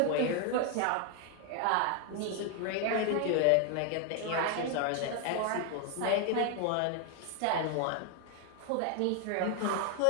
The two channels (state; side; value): different; both; correlation 0.01